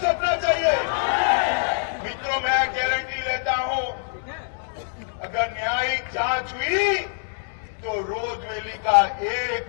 सौंपना चाहिए? मित्रों, मैं गारंटी लेता हूं अगर न्यायिक जांच हुई तो रोजवेली का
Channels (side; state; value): right; silent; digital silence